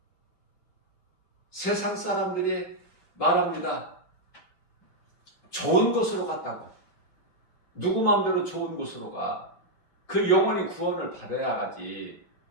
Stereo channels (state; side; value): late; right; 5.5 ms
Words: 세상 사람들이 말합니다. 좋은 곳으로 갔다고. 누구 마음대로 좋은 곳으로 가. 그 영혼이 구원을 받아야 하지.